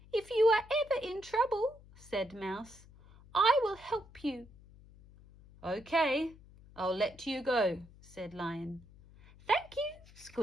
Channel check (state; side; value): noise; left; hum, 23 dB below the sound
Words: "If you are ever in trouble," said Mouse, "I will help you." "Okay, I'll let you go," said Lion. "Thank you,"